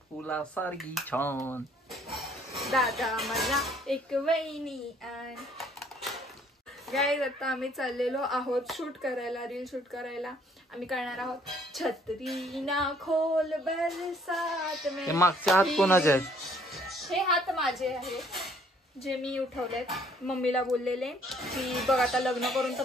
फुलासारखी छान. दादा मला एक वहिनी आण. गाईज, आता आम्ही चाललेलो आहोत शूट करायला, रील शूट करायला. आम्ही करणार आहोत छत्री ना खोल बरसात में. मागचे हात कोणाचे आहेत? हे हात माझे आहे, जे मी उठवलेत. मम्मीला बोललेले की बघ आता लग्न करून तर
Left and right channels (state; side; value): normal; both; correlation 0.62